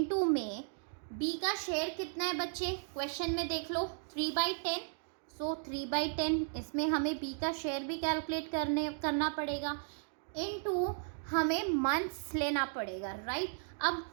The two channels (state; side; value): silent; left; digital silence